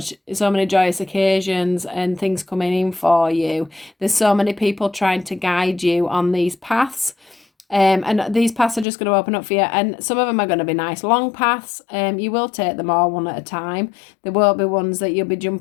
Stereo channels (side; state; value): right; drops out; at 8.8 s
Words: joyous occasions and things coming in for you. There's so many people trying to guide you on these paths. And these paths are just going to open up for you, and some of them are going to be nice long paths. You will take them all one at a time. There won't be ones that you'll be